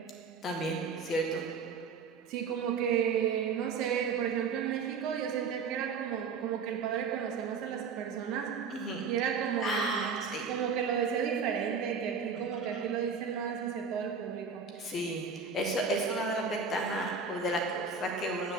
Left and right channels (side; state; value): left; quieter; 5.3 dB